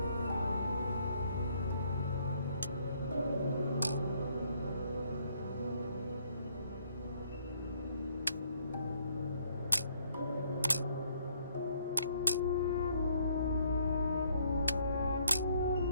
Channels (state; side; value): inverted; both; correlation -0.67